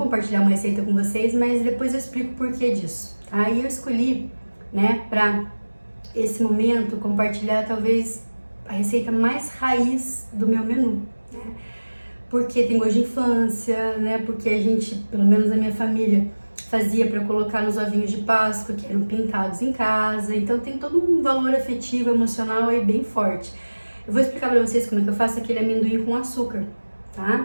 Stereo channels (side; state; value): both; inverted; correlation -1.00